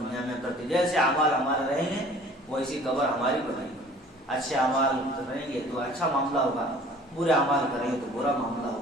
میں کرتے جیسے اعمال ہمارے رہیں گے ویسی قبر ہماری بنائیں گے، اچھے اعمال کریں گے تو اچھا معاملہ ہوگا، برے اعمال کریں گے تو برا معاملہ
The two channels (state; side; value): normal; both; correlation 0.49